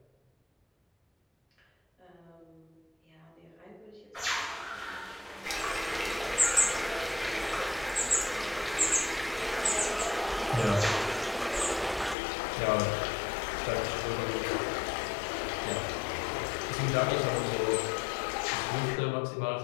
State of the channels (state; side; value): drops out; right; at 12.2 s